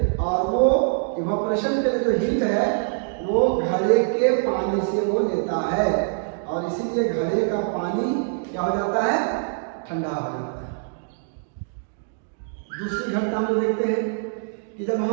और वो इवेपोरेशन के लिए जो हीट है वो घड़े के पानी से वो लेता है, और इसीलिए घड़े का पानी क्या हो जाता है, ठंडा हो जाता है। दूसरी घटना हम लोग देखते हैं कि जब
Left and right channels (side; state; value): left; silent; digital silence